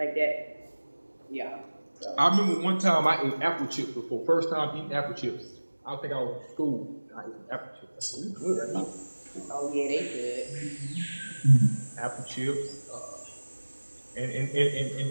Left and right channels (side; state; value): both; inverted; correlation -1.00